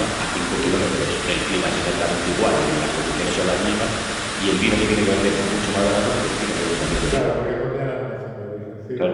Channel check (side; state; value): both; identical; correlation 1.00